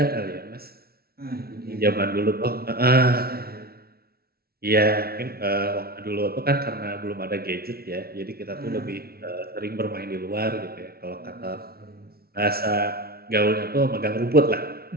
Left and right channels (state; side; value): late; left; 0.44 ms